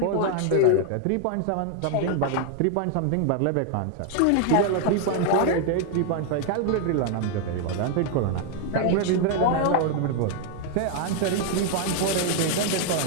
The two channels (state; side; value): different; both; correlation 0.00